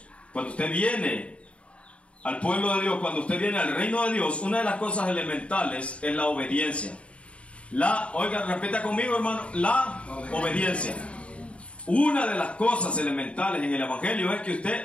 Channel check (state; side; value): late; right; 0.061 ms